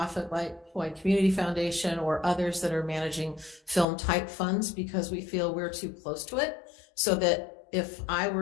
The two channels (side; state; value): right; drops out; at 3.9 s